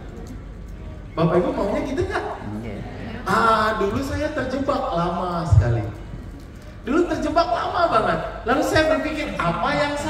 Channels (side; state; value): both; identical; correlation 1.00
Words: Bapak Ibu maunya gitu nggak? Dulu saya terjebak lama sekali. Dulu terjebak lama banget. Lalu saya berpikir, apa yang